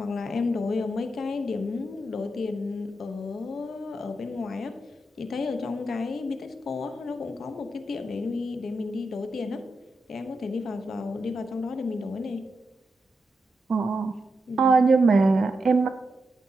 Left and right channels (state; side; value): normal; both; correlation 0.86